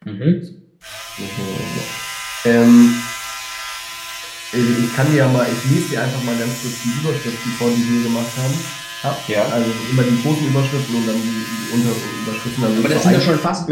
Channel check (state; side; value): identical; both; correlation 1.00